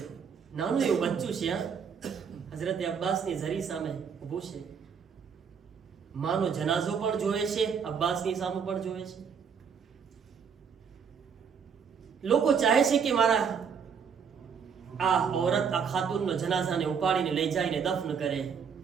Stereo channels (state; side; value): quieter; left; 6.7 dB